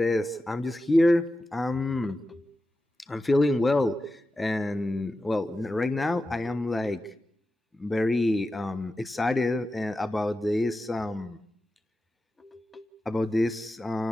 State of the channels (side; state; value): both; normal; correlation 0.92